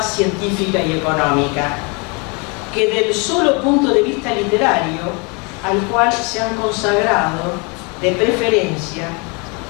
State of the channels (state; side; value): quieter; right; 31.7 dB